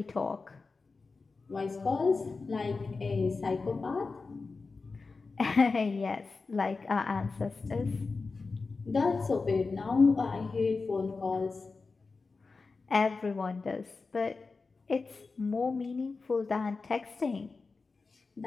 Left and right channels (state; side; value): quieter; right; 4.2 dB